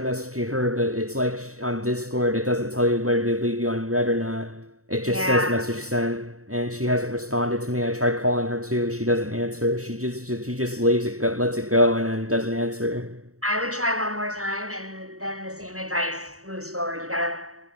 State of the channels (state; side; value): late; left; 0.65 ms